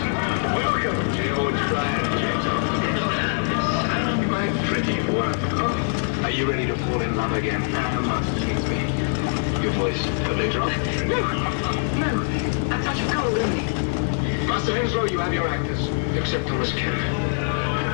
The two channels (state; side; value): silent; right; digital silence